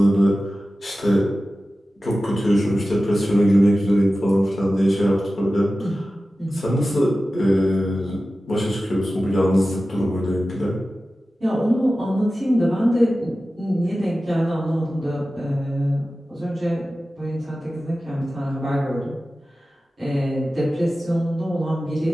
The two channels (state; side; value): normal; both; correlation 0.95